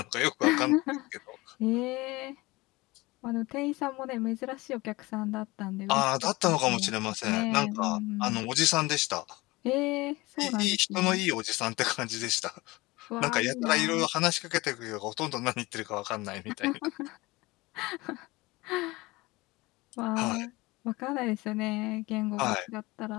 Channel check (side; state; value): right; quieter; 21.8 dB